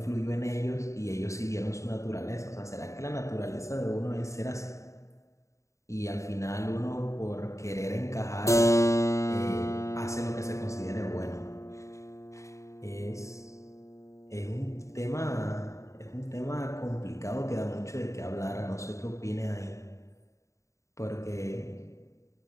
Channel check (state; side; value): late; right; 0.15 ms